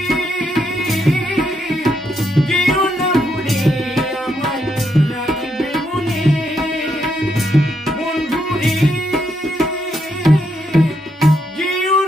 যেও না ভুলে আমায় রাখবে মনে বন্ধুরে যেও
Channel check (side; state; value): both; normal; correlation 0.78